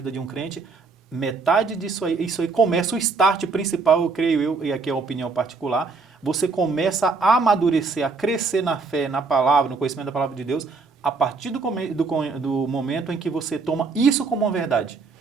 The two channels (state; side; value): quieter; left; 4.3 dB